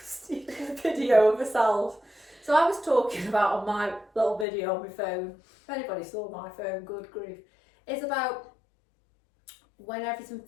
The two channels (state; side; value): drops out; right; at 4.5 s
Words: a video of ourselves. So, I was talking about on my little video on my phone. If anybody saw my phone, good grief. It's about when everything